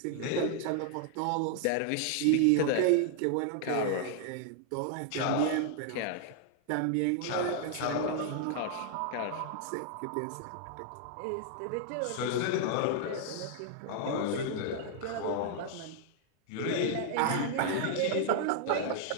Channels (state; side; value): different; both; correlation -0.01